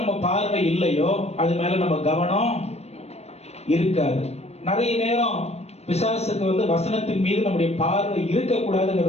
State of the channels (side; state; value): right; late; 0.31 ms